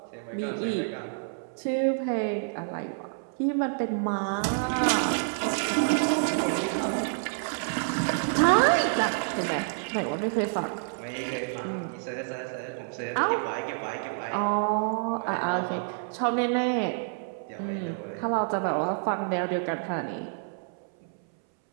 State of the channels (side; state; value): left; silent; 59 dB below the other